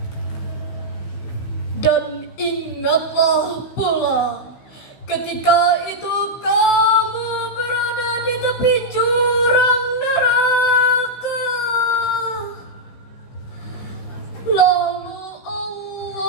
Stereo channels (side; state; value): right; late; 16 ms